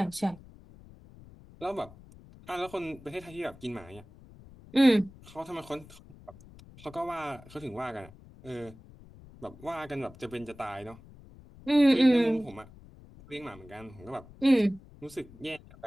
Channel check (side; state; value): left; noise; rumble, 21 dB below the sound